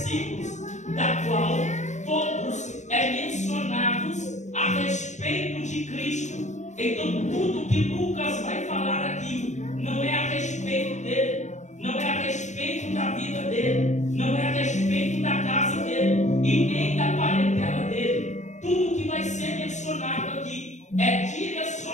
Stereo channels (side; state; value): right; late; 0.34 ms